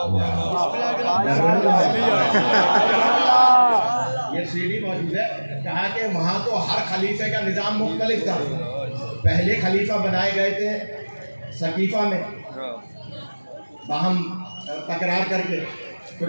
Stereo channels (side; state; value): both; inverted; correlation -1.00